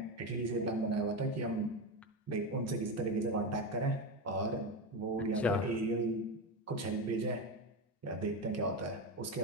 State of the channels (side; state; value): both; normal; correlation 0.16